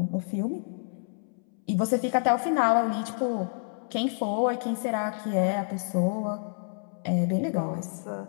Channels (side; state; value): right; silent; 59 dB below the other